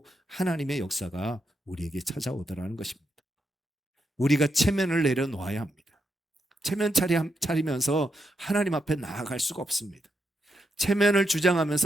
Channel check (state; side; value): normal; both; correlation 0.82